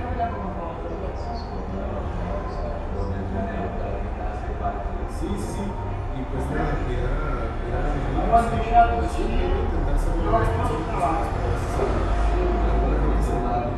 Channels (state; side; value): identical; both; correlation 1.00